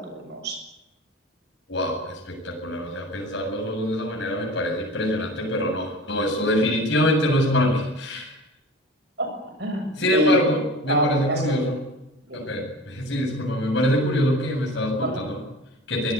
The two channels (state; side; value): normal; both; correlation 0.38